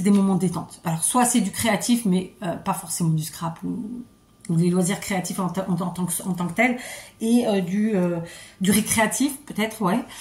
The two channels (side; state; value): both; identical; correlation 1.00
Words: des moments de détente. Alors soit c'est du créatif mais pas forcément du scrap ou des loisirs créatifs en tant que tel, et du récréatif peut-être, ouais,